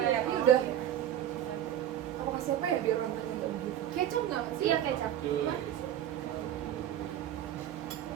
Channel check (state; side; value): quieter; left; 11.1 dB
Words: Ini udah. Apa kasih apa ya biar orang nggak begitu? Kecap nggak sih? Iya kecap. Iya Pak.